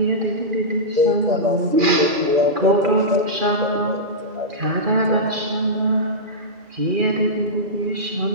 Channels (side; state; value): left; late; 2.4 ms